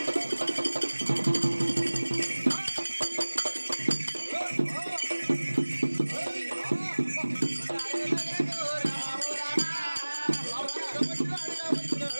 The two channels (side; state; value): both; inverted; correlation -1.00